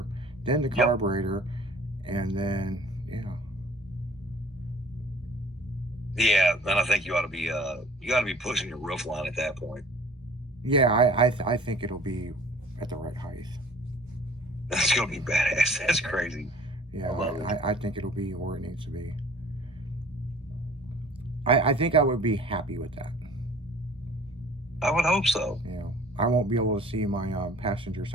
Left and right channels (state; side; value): normal; both; correlation 0.50